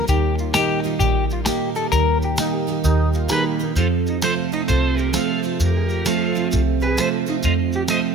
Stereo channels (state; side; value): normal; both; correlation 0.56